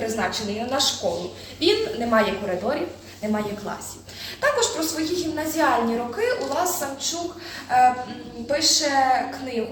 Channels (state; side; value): identical; both; correlation 1.00